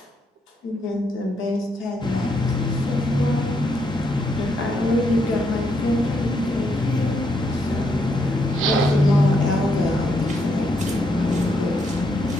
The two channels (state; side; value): normal; both; correlation 0.77